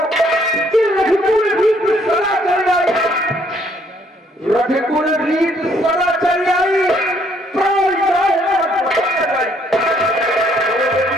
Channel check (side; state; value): both; normal; correlation 0.66